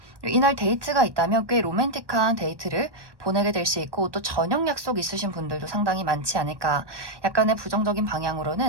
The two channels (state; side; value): late; left; 1.1 ms